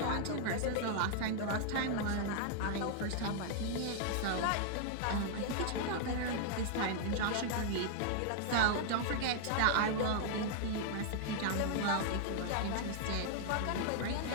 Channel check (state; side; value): different; both; correlation -0.01